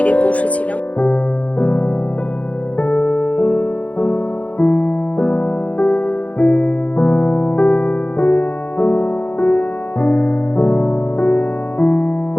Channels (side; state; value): right; late; 0.067 ms